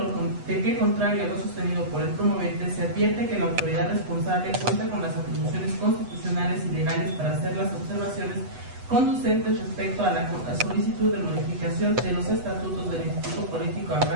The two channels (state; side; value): late; left; 8.1 ms